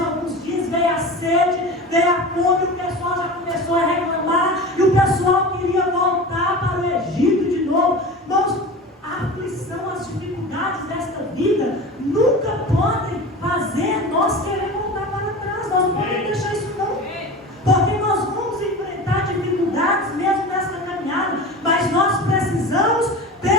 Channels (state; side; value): normal; both; correlation 0.32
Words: dias, veio a sede, veio a fome, o pessoal já começou a reclamar, e o pessoal queria voltar para o Egito de novo. Irmãos, a aflição, as dificuldades desta vida nunca podem fazer nós querer voltar para trás. Nós não podemos deixar isso não, porque nós vamos enfrentar dificuldades mesmo nesta caminhada, mas nós precisamos